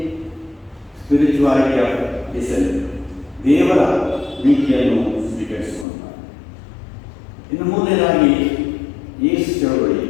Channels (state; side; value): drops out; right; at 5.9 s